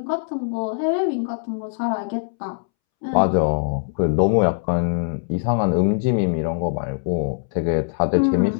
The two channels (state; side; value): silent; right; 64 dB below the other